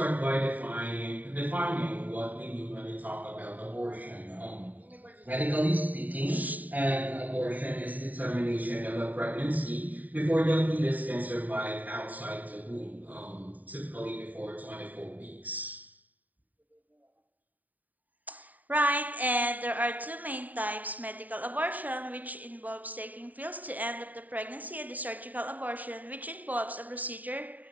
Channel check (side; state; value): left; late; 0.081 ms